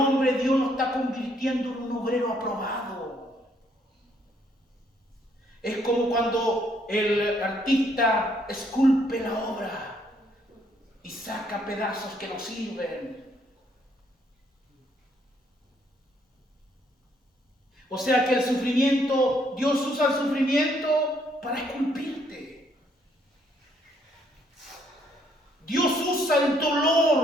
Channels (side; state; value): both; normal; correlation 0.69